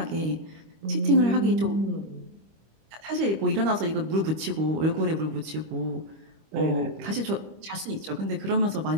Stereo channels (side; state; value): left; late; 25 ms